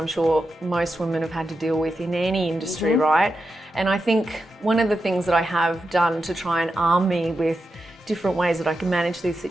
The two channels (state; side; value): normal; both; correlation 0.88